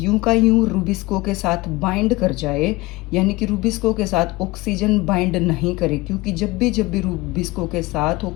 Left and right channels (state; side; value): quieter; right; 21.4 dB